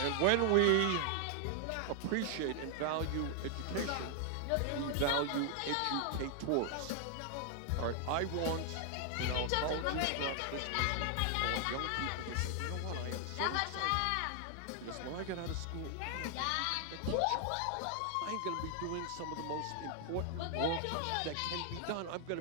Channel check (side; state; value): both; different; correlation 0.00